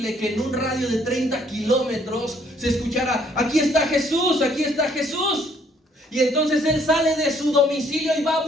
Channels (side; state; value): both; normal; correlation 0.64